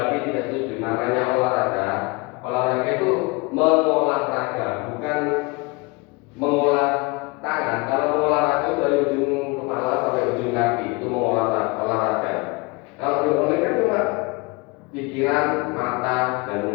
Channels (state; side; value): quieter; right; 27.0 dB